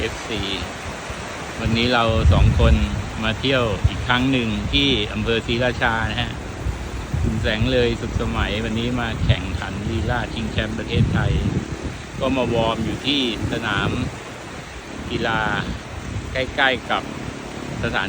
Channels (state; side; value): identical; both; correlation 1.00